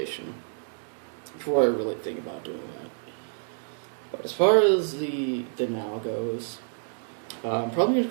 before I really think about doing that. But as far as the now goes, I'm probably going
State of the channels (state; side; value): silent; left; digital silence